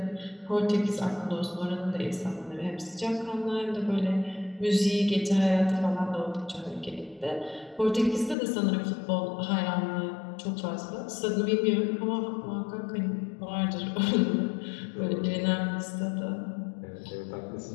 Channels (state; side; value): drops out; right; at 8.3 s